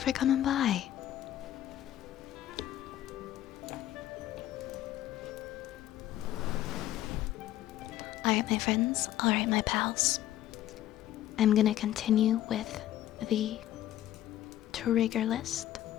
coming by. Alright, my friends. Alright, my pals. I'm gonna continue with the trigger list.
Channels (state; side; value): quieter; right; 13.1 dB